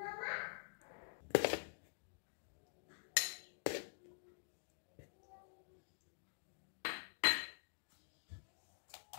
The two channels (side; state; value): right; silent; digital silence